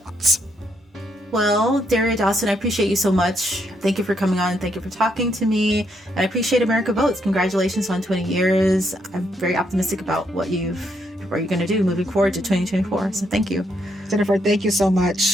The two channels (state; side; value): normal; both; correlation 0.76